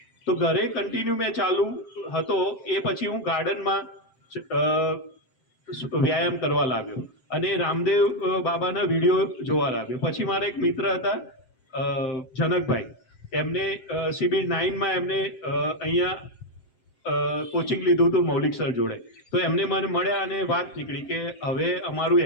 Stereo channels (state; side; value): late; right; 7.7 ms